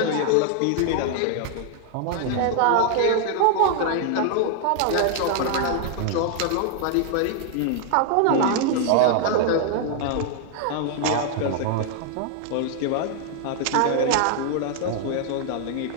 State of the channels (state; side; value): different; both; correlation 0.00